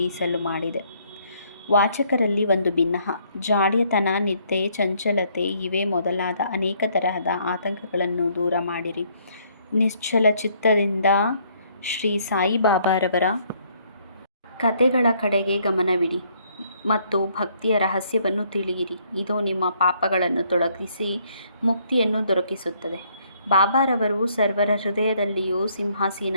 ಮಾಡಿದೆ. ವಾಚಕರಲ್ಲಿ ಒಂದು ಭಿನ್ನಹ, ಜಾಡ್ಯತನ, ನಿದ್ದೆ, ಚಂಚಲತೆ ಇವೇ ಮೊದಲಾದ ಅನೇಕ ತರಹದ ಆತಂಕಗಳನ್ನು ದೂರ ಮಾಡಿರಿ. ನಿಶ್ಚಲ ಚಿತ್ತದಿಂದ ಶ್ರೀ ಸಾಯಿಬಾಬಾರವರ ಕಥೆಗಳ ಕಡೆಗೆ ಗಮನವಿಡಿ ಮತ್ತು ಭಕ್ತಿಯ ರಹಸ್ಯವನ್ನು ತಿಳಿಯಿರಿ. ಇದು ನಿಮ್ಮ ಪಾಪಗಳನ್ನು ತೊಲಗಿಸಿ ಮುಕ್ತಿಯನ್ನು ದೊರಕಿಸುತ್ತದೆ. ಬಾಬಾರವರು ಸರ್ವರ ಹೃದಯದಲ್ಲಿಯೂ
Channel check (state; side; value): inverted; both; correlation -0.67